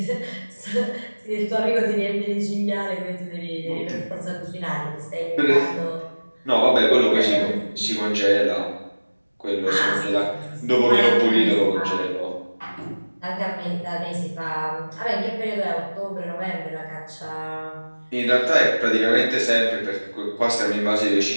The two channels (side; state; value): both; inverted; correlation -1.00